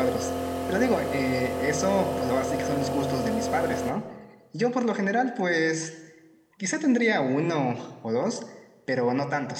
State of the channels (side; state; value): both; identical; correlation 1.00